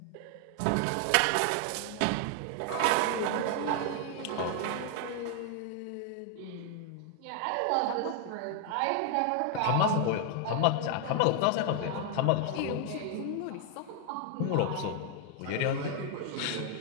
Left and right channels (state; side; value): different; both; correlation 0.00